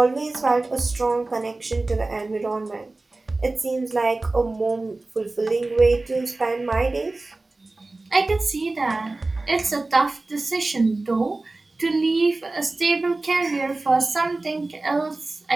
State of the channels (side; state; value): left; quieter; 3.2 dB